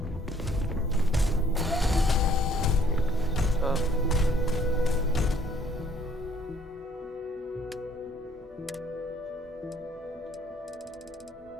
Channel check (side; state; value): both; normal; correlation 0.62